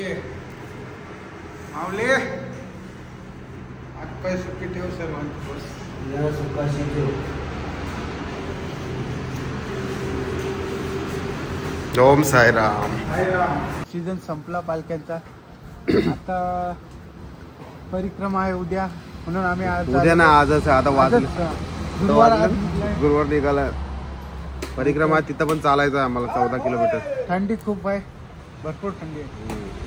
मावले आज पाय सुट्टी ठेव सर्वांची बस ओम साईराम. सीझन संपला पालख्यांचा. आता परिक्रमा आहे उद्या म्हणून आम्ही आज उद्या ना आजच आहे. आता वाजलं गुरुवार निघाला. परिक्रमा तिथं पण चालायचं आहे आम्हाला 14 किलोमीटर. थंडी खूप आहे, भरपूर थंडी आहे.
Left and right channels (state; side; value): identical; both; correlation 1.00